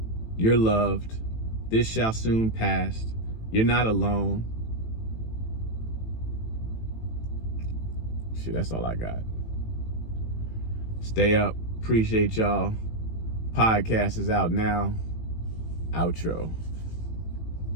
You're loved. This shall soon pass. You're not alone. Shit, that's all I got. Stay up. Appreciate y'all. Podcast is out now. Outro.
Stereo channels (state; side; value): late; right; 18 ms